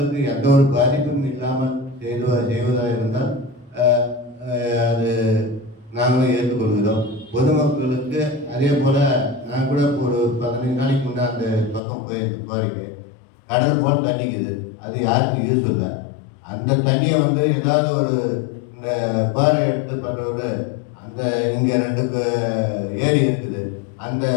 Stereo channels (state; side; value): drops out; right; at 11.8 s